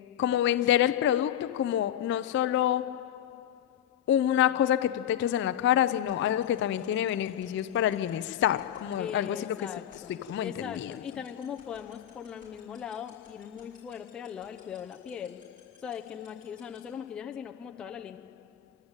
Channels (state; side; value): quieter; right; 10.8 dB